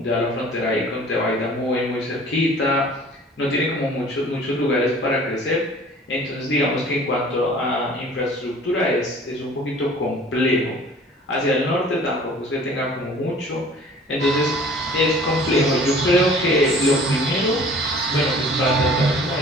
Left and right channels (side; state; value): both; normal; correlation 0.48